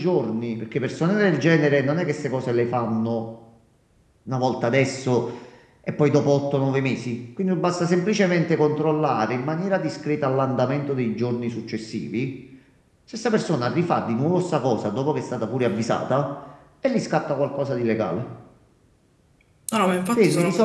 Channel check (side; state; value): both; identical; correlation 1.00